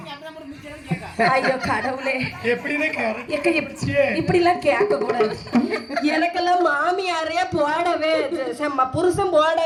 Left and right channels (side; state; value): both; identical; correlation 1.00